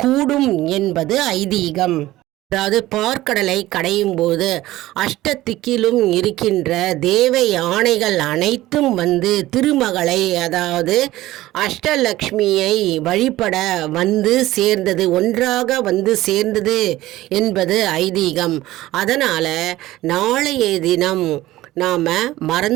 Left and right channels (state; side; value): quieter; left; 16.4 dB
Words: கூடும் என்பது ஐதீகம். அதாவது பார்க்கடலை கடையும் போது அஷ்டதிக்கிலும் இருக்கின்ற தேவ யானைகள் அனைத்தும் திருமகளை அதாவது அஷ்டலக்ஷ்மியை வழிபட சேர்ந்தது, ஒன்றாக சேர்ந்தது என்பது ஐதீகம். அதனால் நாளைய தினம் நாம்